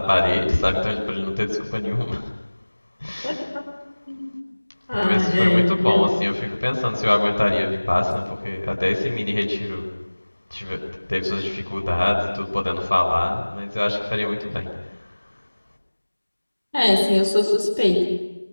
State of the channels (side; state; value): both; inverted; correlation -1.00